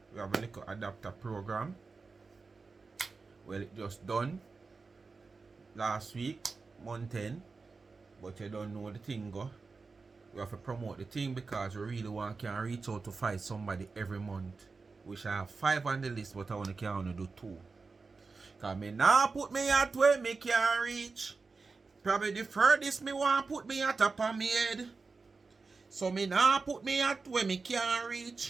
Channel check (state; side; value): quieter; left; 4.3 dB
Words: we have a little adapter program. Well, it just done last week, month 10, but you don't know the thing go. We have to promote the thing because we really want to reach out to find somebody every month. Which I have 5 on the list, but I only can only do 2. Because me now put me at where me can reach. Probably the furthest me want put me at up on me head. So me now put me at where me can